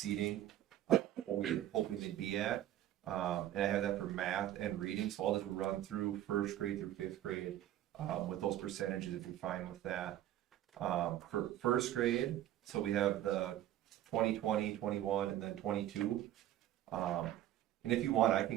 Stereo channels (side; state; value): left; quieter; 12.8 dB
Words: what we were hoping they'd be at. And I have that for math and reading, so I'll just run through first grade through fifth grade, with those percentages if you're fine with that. For first grade, so we have the 2020, 21, and then 22. And if you want, I